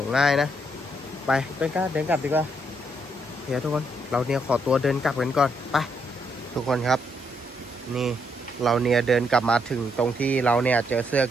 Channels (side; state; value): both; normal; correlation 0.75